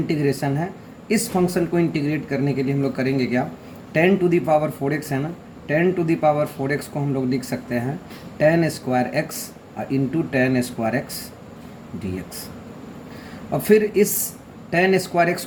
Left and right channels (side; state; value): both; identical; correlation 1.00